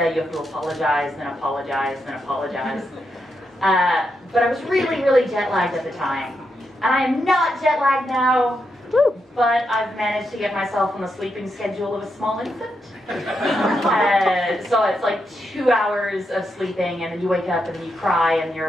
you have to apologize, then apologize, then apologize. But I was really, really jet lagged at the time. And I am not jet lagged now, but I've managed to get myself on the sleeping schedule of a small infant. So it's like 2 hours of sleeping, and then you wake up and then you cry and you're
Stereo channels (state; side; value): normal; both; correlation 0.83